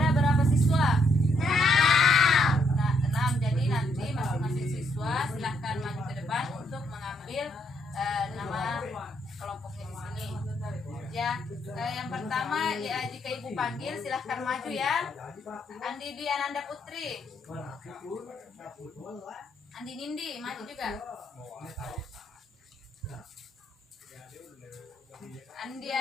berapa siswa? 6. Jadi nanti masing-masing siswa silahkan maju ke depan untuk mengambil nama kelompoknya di sini. Ya, yang pertama ya, jika Ibu panggil silahkan maju ya. Andi Dwi Ananda Putri, Andi Nindi maju juga. Andi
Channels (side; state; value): both; normal; correlation 0.74